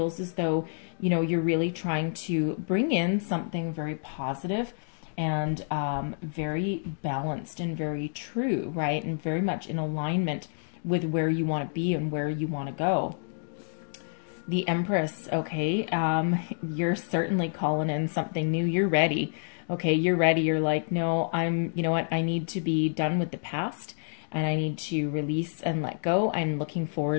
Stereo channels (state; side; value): silent; right; digital silence